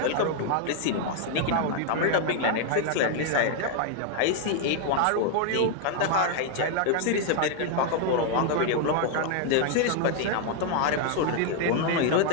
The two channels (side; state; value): both; different; correlation 0.00